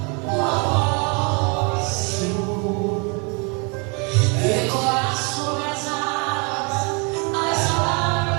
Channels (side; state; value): left; quieter; 33.3 dB